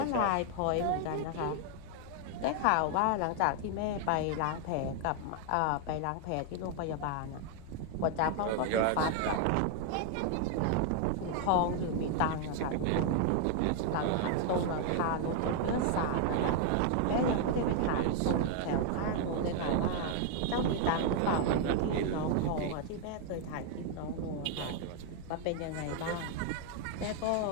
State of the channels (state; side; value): different; both; correlation 0.00